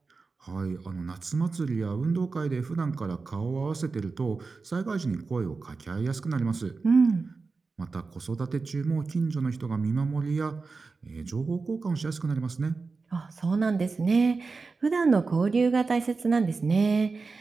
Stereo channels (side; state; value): left; quieter; 4.2 dB